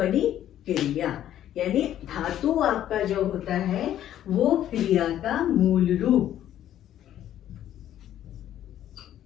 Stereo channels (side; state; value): right; quieter; 11.6 dB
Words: क्रिया। यानी धातु आपका जो होता है वो क्रिया का मूल रूप,